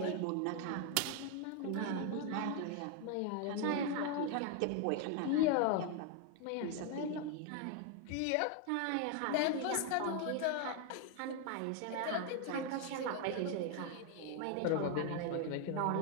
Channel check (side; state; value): both; different; correlation 0.01